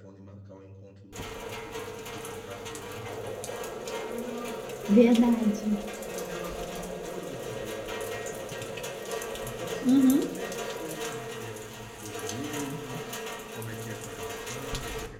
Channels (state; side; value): identical; both; correlation 1.00